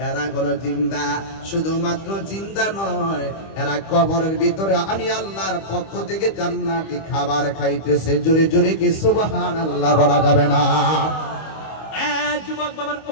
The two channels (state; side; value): late; right; 25 ms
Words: এরা হলো জিন্দা, শুধুমাত্র জিন্দা নয়, এরা কবরের ভিতরে আমি আল্লাহর পক্ষ থেকে জান্নাতি খাবার খাইতেছে। জোরে জোরে কি সুবহানাল্লাহ বলা যাবে না? যুবক বাবার